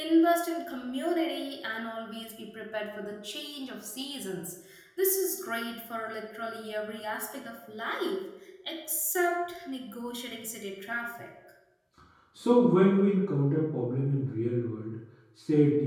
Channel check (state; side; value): identical; both; correlation 1.00